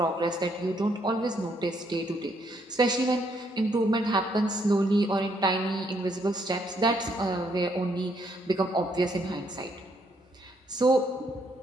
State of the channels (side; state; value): both; normal; correlation 0.71